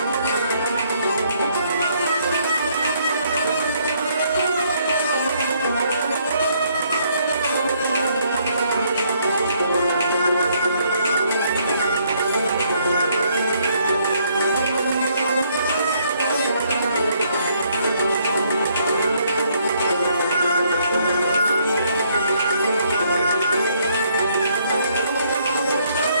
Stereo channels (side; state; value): both; inverted; correlation -0.69